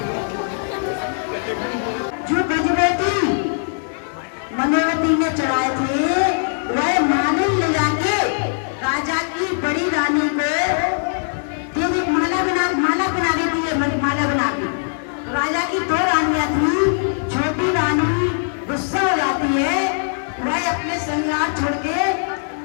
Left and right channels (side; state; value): right; silent; digital silence